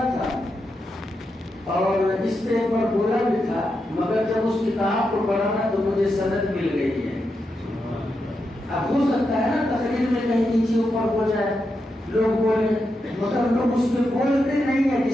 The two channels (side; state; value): both; normal; correlation 0.86